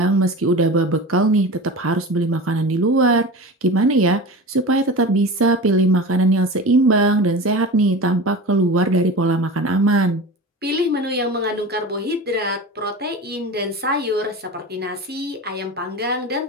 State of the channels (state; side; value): normal; both; correlation 0.31